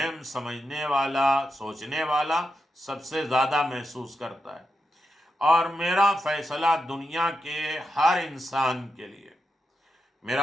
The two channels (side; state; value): both; normal; correlation 0.87